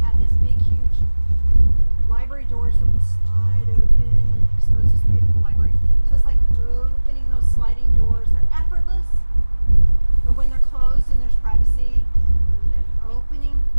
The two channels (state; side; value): inverted; both; correlation -1.00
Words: had this big huge library doors that would slide open and expose this beautiful library. So it's like opening those sliding doors. They're effortless, but when they're closed and there's privacy, and then opening,